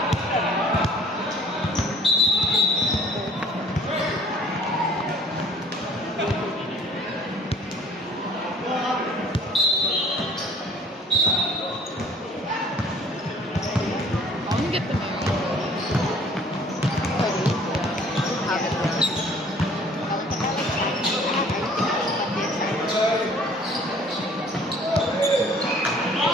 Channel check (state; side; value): normal; both; correlation 0.52